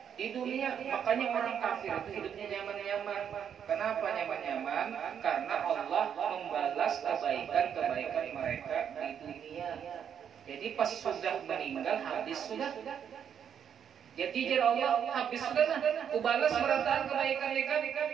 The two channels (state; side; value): quieter; left; 8.3 dB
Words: di dunia. Makanya orang kafir itu hidupnya nyaman-nyaman. Kenapa nyaman-nyaman? Karena Allah membalas kebaikan-kebaikan mereka di dunia. Jadi pas sudah meninggal habis sudah. Jadi Allah habis sudah, aku balas berataan kebaikan mereka.